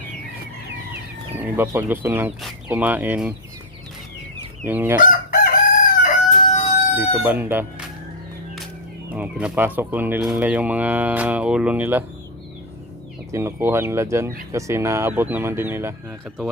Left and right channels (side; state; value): both; normal; correlation 0.02